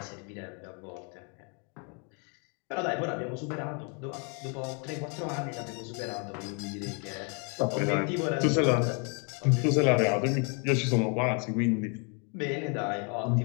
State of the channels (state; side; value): quieter; right; 37.1 dB